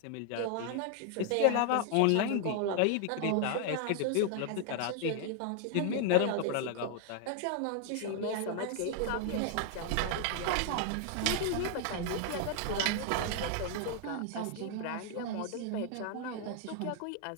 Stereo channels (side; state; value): both; different; correlation 0.00